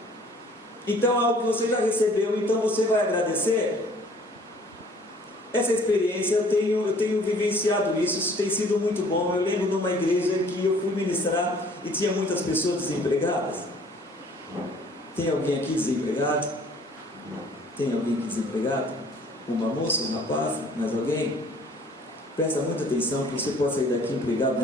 Então algo que você já recebeu, então você vai agradecer. Essa experiência eu tenho vivenciado isso tem sido muito bom. Eu lembro numa igreja que eu fui ministrar e tinha muitas pessoas desempregadas. Tem alguém aqui desempregado? Tem alguém aqui desempregado? Uma moça, um rapaz, mais alguém? Presta muita atenção que você pode sair daqui empregado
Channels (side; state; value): both; normal; correlation 0.55